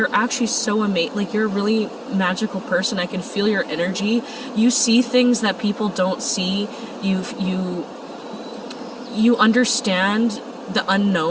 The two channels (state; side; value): identical; both; correlation 1.00